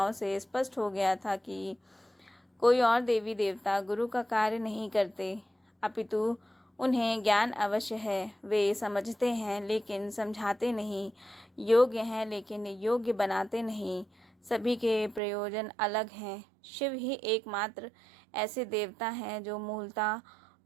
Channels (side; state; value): left; drops out; at 15.2 s